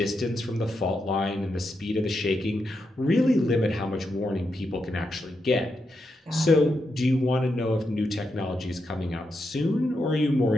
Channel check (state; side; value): normal; both; correlation 0.84